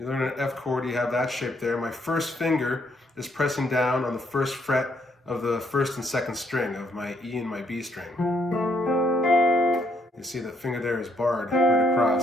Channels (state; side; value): normal; both; correlation 0.71